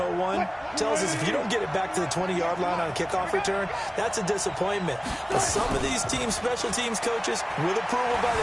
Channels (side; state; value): both; identical; correlation 1.00